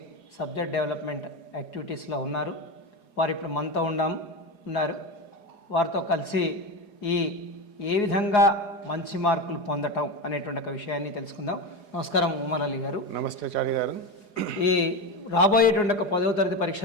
సబ్జెక్ట్ డెవలప్మెంట్ యాక్టివిటీస్లో ఉన్నారు. వారు ఇప్పుడు మనతో ఉన్నారు. వారితో కలిసి ఏ విధంగా మంచి మార్కులు పొందటం అనేటువంటి ఒక విషయాన్ని తెలుసుకుందాం. నమస్కారం ఉమర్ అలీ గారు. నమస్తే చారి గారు. ఈ రాబోయేటువంటి ఒక 10వ తరగతి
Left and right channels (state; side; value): late; right; 4.8 ms